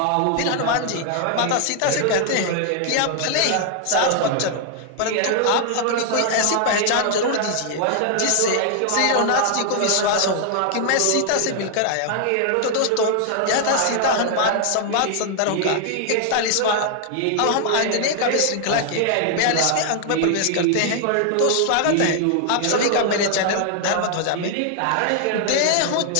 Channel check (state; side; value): different; both; correlation 0.00